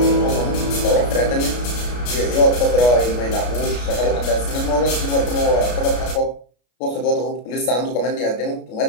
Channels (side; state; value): right; late; 33 ms